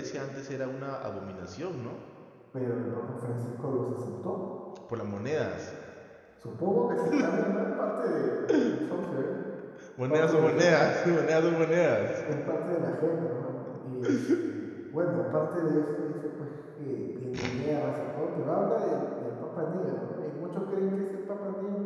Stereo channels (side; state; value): both; identical; correlation 1.00